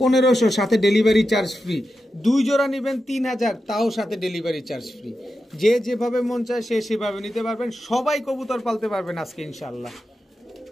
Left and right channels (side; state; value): both; normal; correlation 0.90